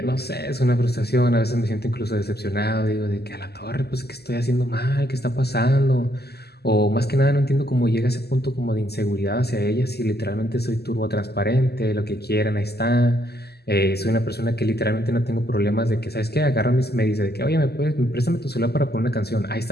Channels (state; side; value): late; right; 0.47 ms